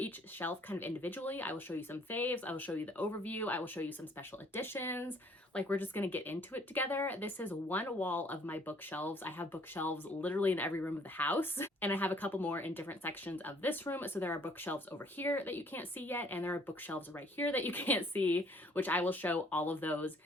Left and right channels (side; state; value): both; normal; correlation 0.60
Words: shelf kind of individually. I will show you some faves. I will show you the overview. I will show you some special editions. Like, we're just going to get into it together. This is one wall of my bookshelves. I have bookshelves literally in every room of the house. And I have a couple more in different sections of this room. So there are bookshelves over here that you can't see yet. And there are bookshelves right here that you can't see, which I will show all of those